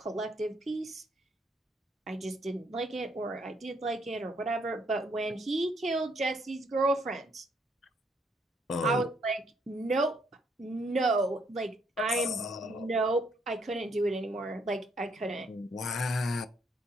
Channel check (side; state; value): both; normal; correlation 0.71